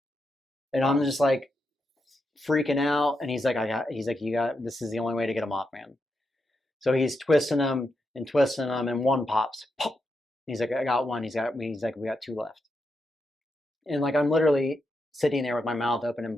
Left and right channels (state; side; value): normal; both; correlation 0.84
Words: And I'm just like freaking out. And he's like, this is the only way to get him off, man. So he's twisting them, and one pops. Pop! He's like, I got one. He's like, we got 2 left. And like, I'm literally sitting there with my mouth open and